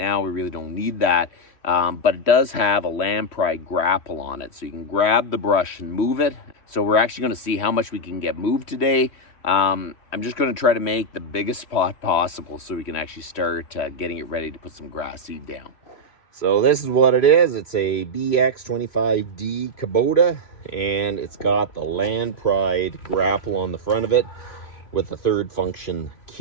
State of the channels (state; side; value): late; right; 3.1 ms